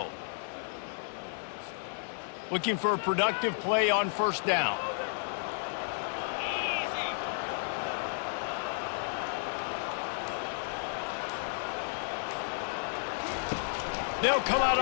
Looking for a productive play on first down. They'll come out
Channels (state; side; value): silent; right; 56 dB below the other